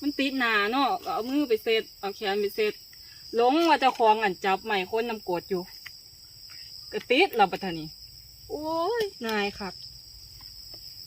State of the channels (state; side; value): identical; both; correlation 1.00